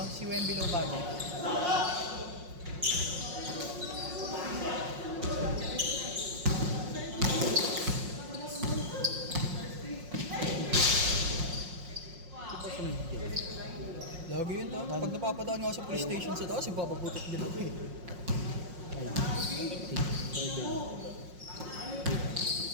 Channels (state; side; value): late; left; 5.5 ms